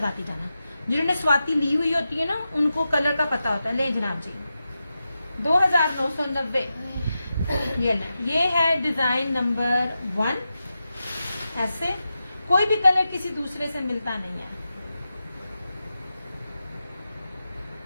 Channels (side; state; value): both; inverted; correlation -0.91